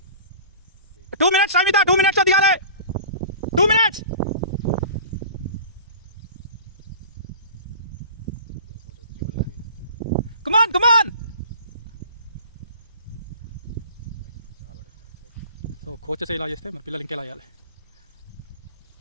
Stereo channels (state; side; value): inverted; both; correlation -0.41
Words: 2 minutes, Samita, 2 minutes दिखाले. 2 minutes. Come on. So coaches ఇలా చేస్తే మరి పిల్లలు ఇంకెలా చేయాలి?